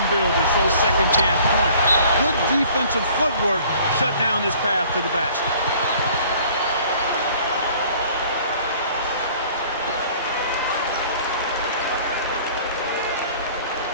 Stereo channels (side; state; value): both; inverted; correlation -0.53